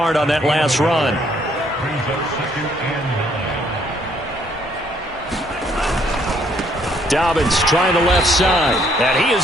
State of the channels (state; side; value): normal; both; correlation 0.67